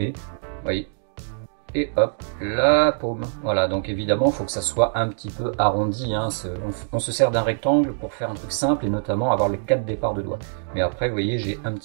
vous voyez, et hop, la paume. Voilà, donc évidemment, il faut que ça soit un petit peu arrondi, hein. On se sert d'un rectangle pour faire un truc simple, et notamment avoir les 4 départs de doigts. Mais après, vous voyez, j'ai un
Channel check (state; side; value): silent; left; digital silence